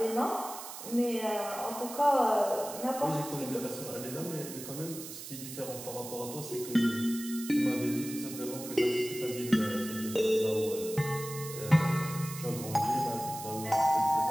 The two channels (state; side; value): noise; right; hiss, 11 dB below the sound